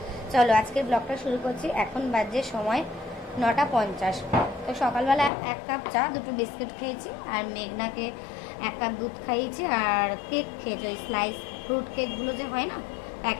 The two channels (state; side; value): drops out; right; at 5.3 s